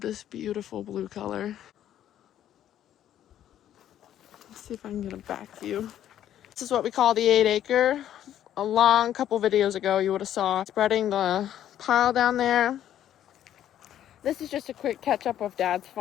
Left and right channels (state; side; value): quieter; right; 11.2 dB